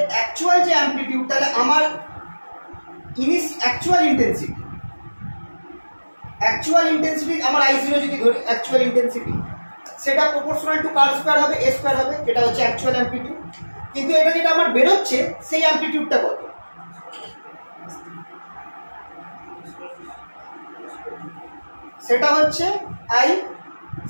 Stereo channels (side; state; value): both; inverted; correlation -1.00